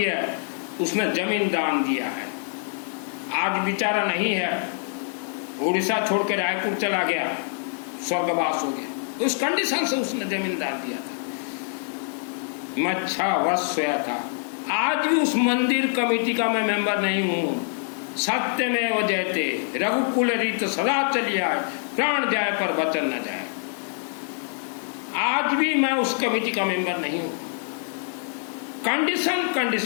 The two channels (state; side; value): silent; right; 62 dB below the other